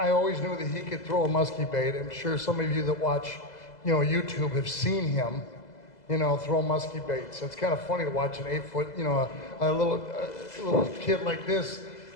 always knew that he could throw a musky bait. I'm sure some of you that watch, you know, YouTube have seen him, you know, throw musky baits. It's kind of funny to watch an 8-foot, you know, a little kid like this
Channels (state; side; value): late; right; 2.0 ms